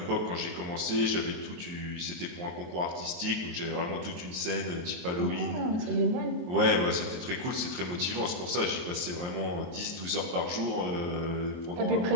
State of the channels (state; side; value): late; left; 23 ms